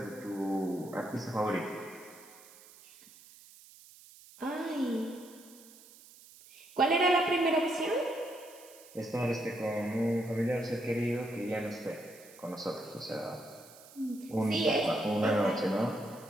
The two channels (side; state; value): right; noise; hiss, 21 dB below the sound